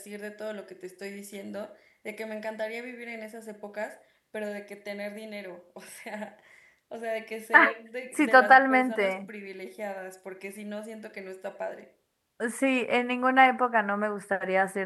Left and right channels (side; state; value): both; identical; correlation 1.00